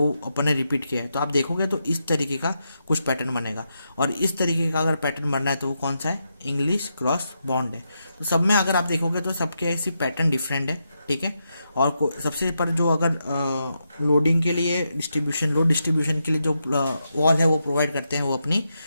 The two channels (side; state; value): both; inverted; correlation -0.84